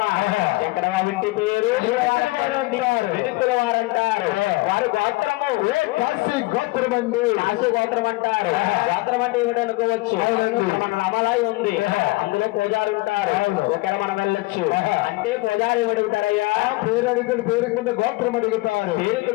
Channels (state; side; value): quieter; right; 22.5 dB